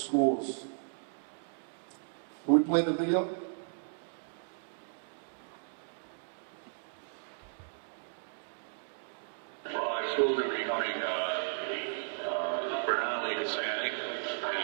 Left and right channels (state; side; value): silent; left; digital silence